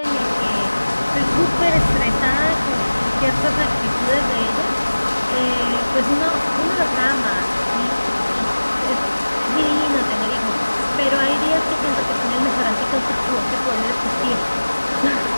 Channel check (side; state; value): both; inverted; correlation -1.00